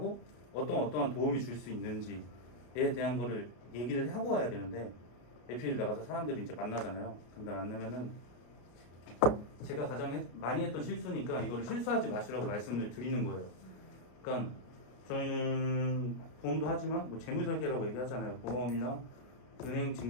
어떠한 도움이 줄 수 있는지에 대한 거를 얘기를 하고 와야 되는데 에피를 나가서 사람들이 이제 만나잖아요. 근데 만나면은 제가 가장 많이 했던 실수니까 이거를 실수하지 마시라고 말씀을 드리는 거예요. 그러니까 저희는 보험도 하지만 뭐 재무설계라고 얘기하잖아요. 보험이나 은행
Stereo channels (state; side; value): late; right; 33 ms